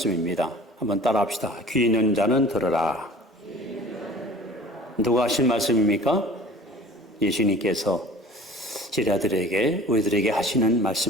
한번 따라합시다. 귀 있는 자는 들으라. 누가 하신 말씀입니까? 예수님께서 제자들에게, 우리들에게 하시는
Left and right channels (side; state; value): both; normal; correlation 0.44